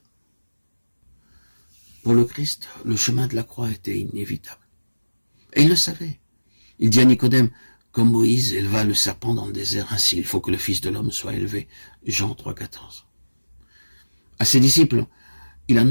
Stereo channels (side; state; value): both; inverted; correlation -1.00